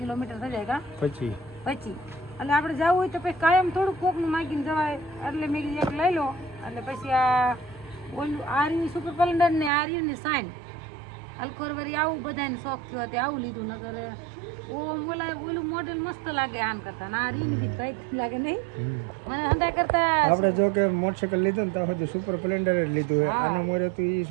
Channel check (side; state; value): left; drops out; at 9.7 s